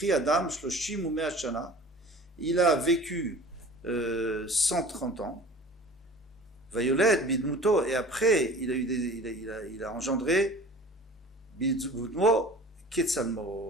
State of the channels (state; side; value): normal; both; correlation 0.43